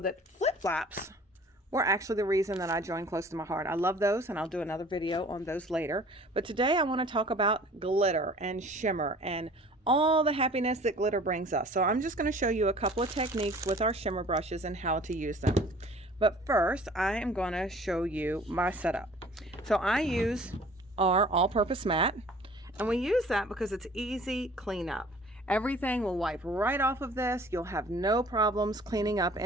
that flip-flops were actually the reason that I joined Close to My Heart. I love those and I'll do another video on those later. But today I want to talk about glitter and shimmer and all the happiness that glitter brings us. So I'm just going to show you a couple of techniques with our shimmer brushes and how to use them. But first, I am going to show you my setup. So I use our all-purpose mat, and we use that because it's easy cleanup. Everything will wipe right off of this. You'll have no problems cleaning up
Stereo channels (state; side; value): normal; both; correlation 0.49